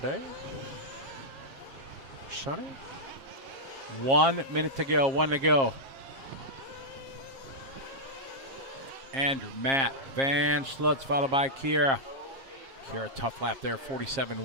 Sonny? 1 minute to go. 1 to go. Andrew, Matt, Van Schlutz, followed by Kiara. Kiara, tough lap there,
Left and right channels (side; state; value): left; late; 7.4 ms